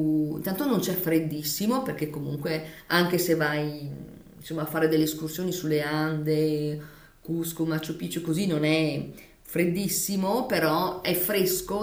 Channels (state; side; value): identical; both; correlation 1.00